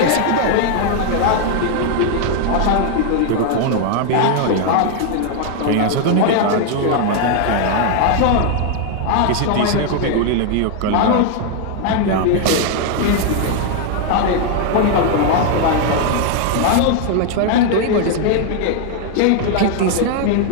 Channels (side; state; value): both; different; correlation 0.00